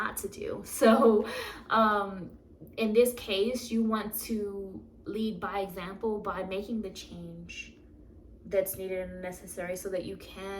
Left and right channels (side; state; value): both; identical; correlation 1.00